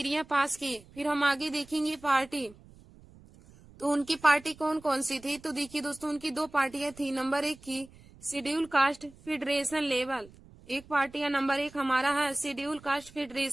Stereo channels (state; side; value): noise; right; rumble, 23 dB below the sound